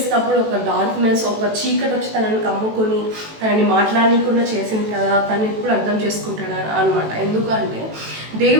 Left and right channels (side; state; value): left; late; 18 ms